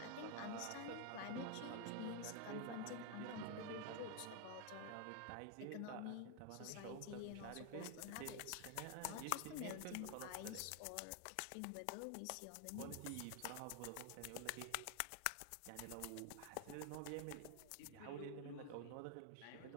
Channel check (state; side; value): different; both; correlation 0.00